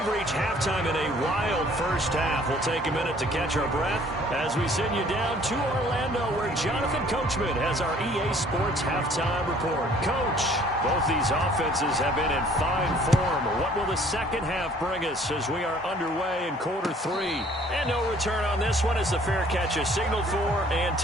reached halftime in a wild first half. We'll take a minute to catch our breath as we send you down to Orlando, where Jonathan Coachman has our EA Sports halftime report. Coach, both these offenses have been in fine form. What will the second half bring us as we are underway in quarter 3? And no return on this one as the fair catch is signaled for and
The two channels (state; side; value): normal; both; correlation 0.56